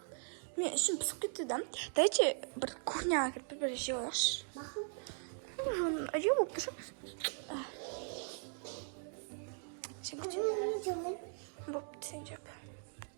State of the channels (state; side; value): silent; left; 52 dB below the other